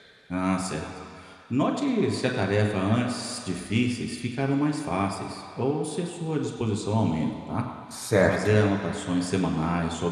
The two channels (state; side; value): identical; both; correlation 1.00